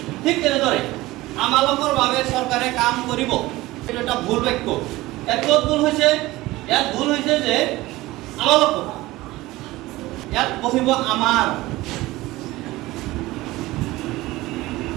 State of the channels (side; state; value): left; quieter; 18.7 dB